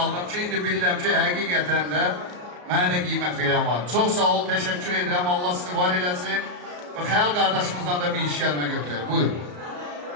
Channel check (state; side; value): late; left; 34 ms